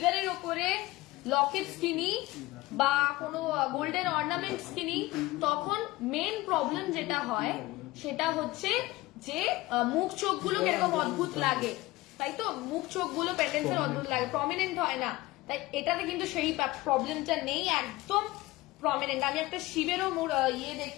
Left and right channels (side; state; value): right; quieter; 19.2 dB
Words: ওপরে লকেটস কিনি বা কোনো গোল্ডেন অর্নামেন্টস কিনি, তখন মেন প্রবলেম যেটা হয় সেটা হচ্ছে যে মুখ চোখগুলো কিরকম অদ্ভুত লাগে, তাই তো? মুখ চোখগুলো পেন্ডেন্টসের অদ্ভুত লাগে, প্রমিনেন্ট হয় না। তাই এটাতে কিন্তু সেই প্রবলেমটা নেই, একদম প্রমিনেন্ট। আমি একটা শিবেরও